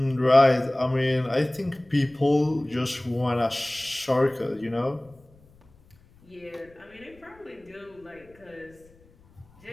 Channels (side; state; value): left; noise; rumble, 28 dB below the sound